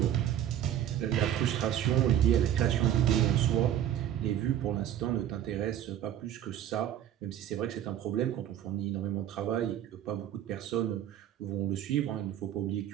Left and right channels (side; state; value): left; quieter; 10.9 dB